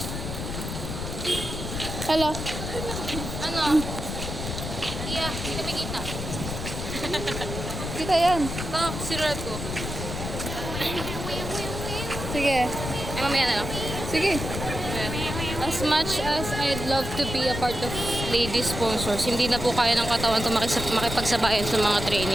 Hello. Ano? Yeah, hindi kami kita. Kita yan. Ito, sirulat ko. Sige. Ay, mamaya na lang. Sige. As much as I'd love to be a part of lady sponsors, hindi na po kaya ng katawan ko makipagsabayan sa mga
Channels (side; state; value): left; noise; rumble, 5 dB below the sound